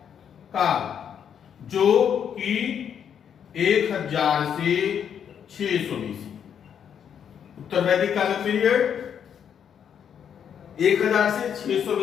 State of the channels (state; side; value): quieter; right; 8.3 dB